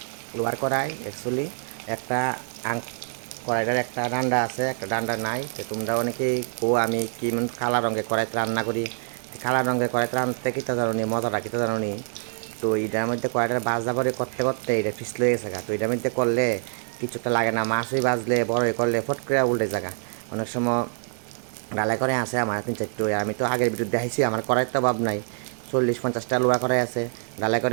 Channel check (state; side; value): silent; left; digital silence